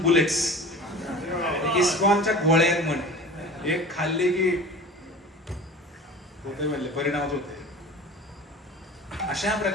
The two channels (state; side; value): normal; both; correlation 0.38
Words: बुलेट्स. इस्कॉनच्या गोळ्या म्हणे, एक खाल्ले की होते म्हणले, परिणामच होते. अशा